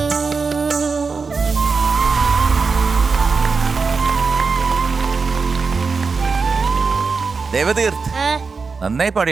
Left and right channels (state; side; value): quieter; left; 4.8 dB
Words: ദേവതീർത്ത് നന്നായി പാടി